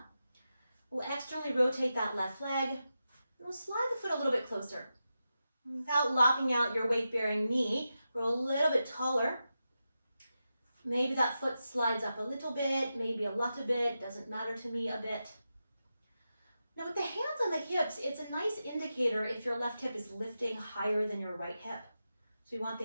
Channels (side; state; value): both; inverted; correlation -0.90